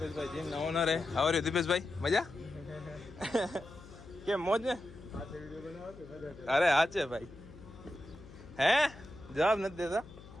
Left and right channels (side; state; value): left; noise; hum, 18 dB below the sound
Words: જીમ ના ઓનર. આવર્યું દીપેશભાઈ? મજા કેમ? મોજ ને? અરે હા છે ભાઈ. હે જવાબ નથી દેતા